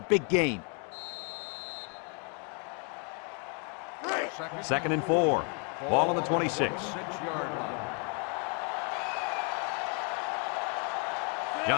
gain. 2nd and 4. Ball on the 26. 6-yard line.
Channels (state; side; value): quieter; right; 38.1 dB